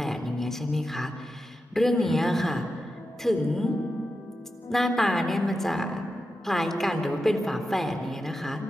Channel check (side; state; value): both; normal; correlation 0.90